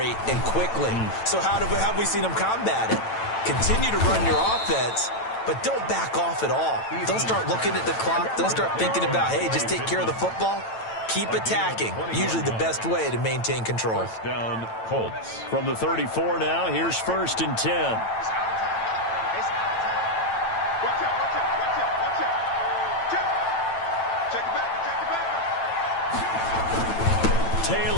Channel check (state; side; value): late; right; 9.0 ms